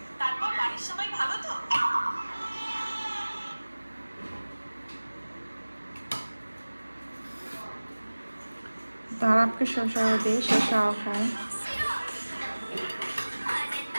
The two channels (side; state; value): both; inverted; correlation -1.00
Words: তারাবকে শসাও দিই, শসাও খায়।